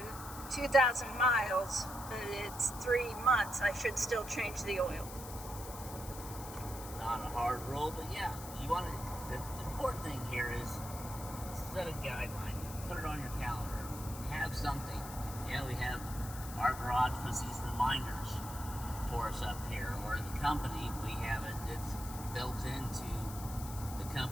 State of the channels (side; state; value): left; noise; hiss, 12 dB below the sound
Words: 2,000 miles, but it's 3 months, I should still change the oil. Not a hard rule, but yeah, you want to. The important thing here is set a guideline, put it on your calendar, have something. Yeah, we have our garage puts these reminders for us up here, or the company, we have it. It's built into the